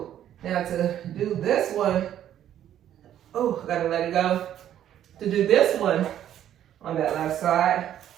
Now to do this one, oh, gotta let it go. To do this one on that left side,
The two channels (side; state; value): left; quieter; 11.0 dB